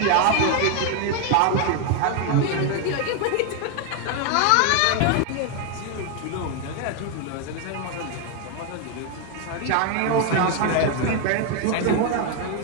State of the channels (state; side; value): different; both; correlation 0.01